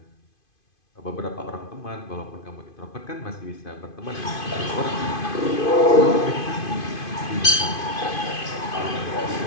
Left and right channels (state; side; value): late; right; 2.5 ms